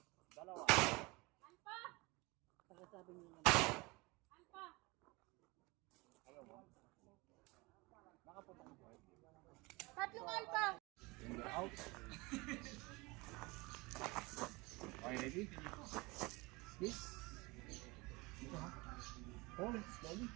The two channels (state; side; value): quieter; left; 24.4 dB